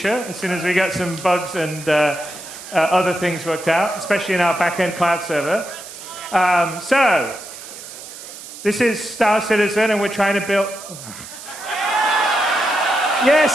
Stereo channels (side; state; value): right; noise; hiss, 14 dB below the sound